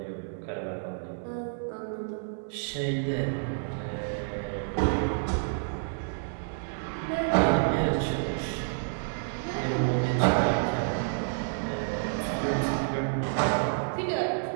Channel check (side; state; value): left; silent; digital silence